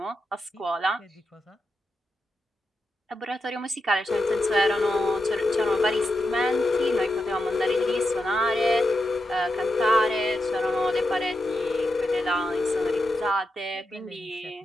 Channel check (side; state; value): both; normal; correlation 0.87